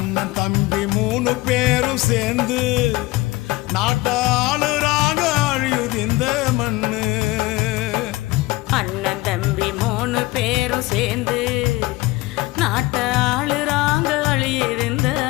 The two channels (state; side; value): quieter; right; 20.5 dB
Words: தம்பி 3 பேரும் சேர்ந்து நாட்டாளுறாக அழியுது இந்த மண்ணு அண்ணன் தம்பி 3 பேரும் சேர்ந்து நாட்டை ஆளுறாங்க அழியிருந்த